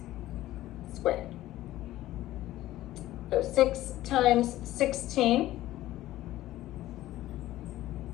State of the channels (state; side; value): quieter; right; 15.2 dB